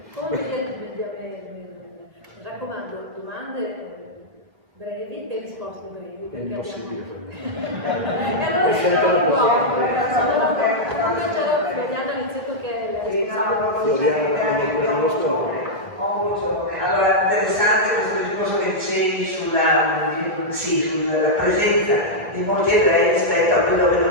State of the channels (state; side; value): late; left; 2.2 ms